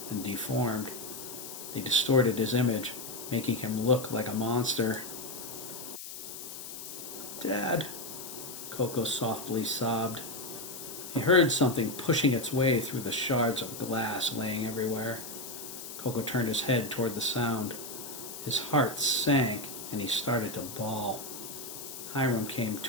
and deformed. They distorted his image, making him look like a monster. "Dad," Coco softly sobbed. He heard something pushing its way through the shards of glass laying everywhere. Coco turned his head toward the sound. His heart sank, and he started to bawl. Hiram came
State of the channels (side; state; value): left; noise; hiss, 10 dB below the sound